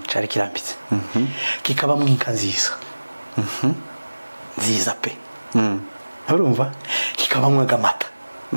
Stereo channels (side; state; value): both; inverted; correlation -1.00